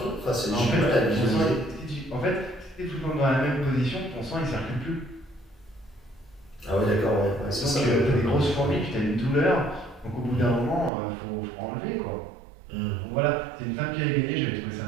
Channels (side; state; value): left; drops out; at 10.9 s